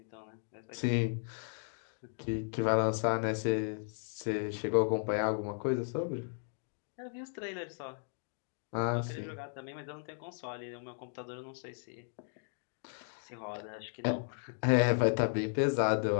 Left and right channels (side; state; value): right; silent; digital silence